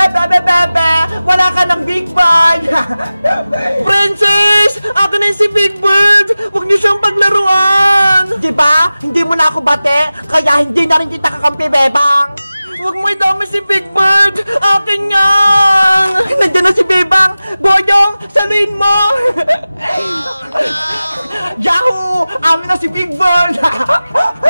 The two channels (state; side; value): inverted; both; correlation -0.97